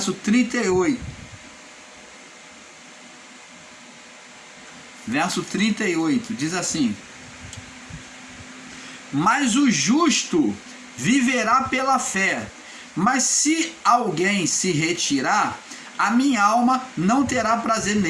38. Verso 38, diz assim: mas o justo viverá pela fé, mas se alguém se retirar, a minha alma não terá prazer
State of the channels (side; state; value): both; identical; correlation 1.00